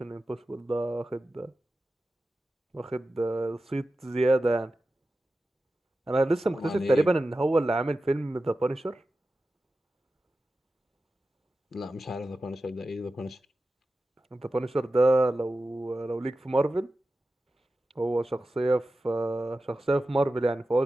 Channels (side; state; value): both; normal; correlation 0.93